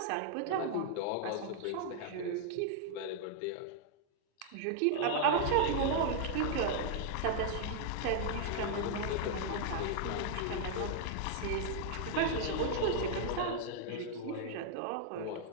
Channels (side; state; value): both; different; correlation 0.00